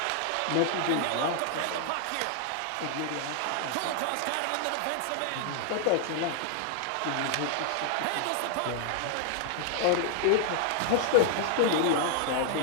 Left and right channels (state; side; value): different; both; correlation 0.00